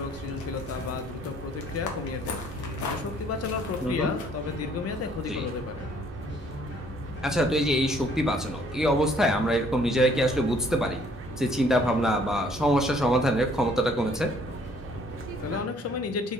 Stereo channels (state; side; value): normal; both; correlation 0.61